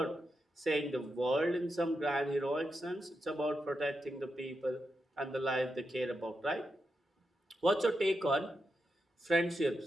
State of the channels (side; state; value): both; normal; correlation 0.86